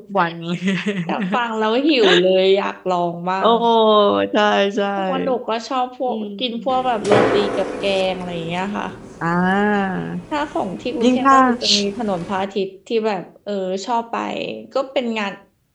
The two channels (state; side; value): identical; both; correlation 1.00